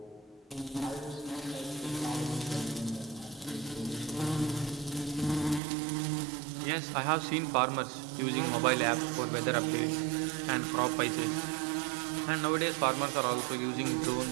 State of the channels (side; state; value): left; drops out; at 5.6 s